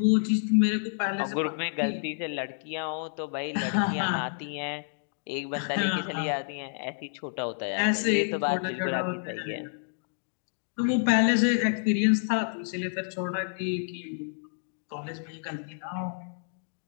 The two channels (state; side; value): silent; right; digital silence